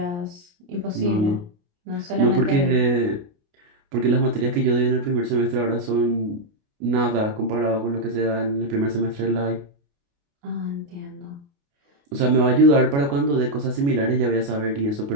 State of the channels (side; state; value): left; late; 29 ms